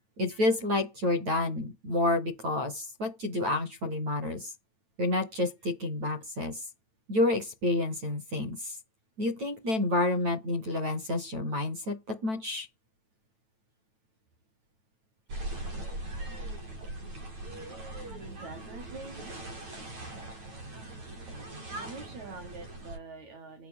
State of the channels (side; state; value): left; late; 9.1 ms